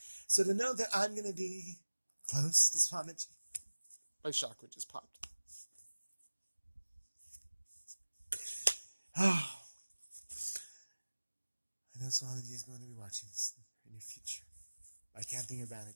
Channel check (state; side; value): inverted; both; correlation -1.00